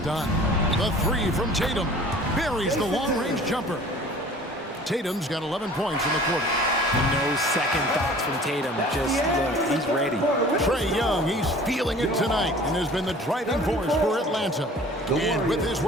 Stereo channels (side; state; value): both; normal; correlation 0.47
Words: done. The 3 from Tatum. Buries the long-range jumper. Tatum's got 11 points in the quarter. No second thoughts from Tatum. Just look, he's ready. Trae Young, he's feeling it tonight and has been the driving force for Atlanta. And with his